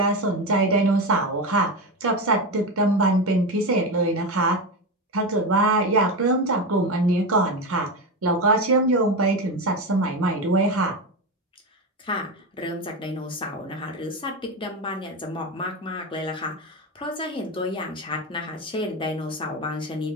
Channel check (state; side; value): normal; both; correlation 0.17